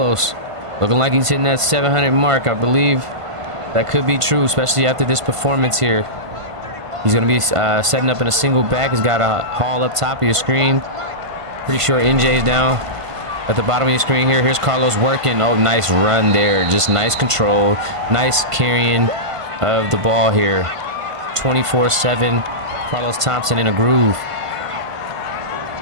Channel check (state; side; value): late; left; 1.5 ms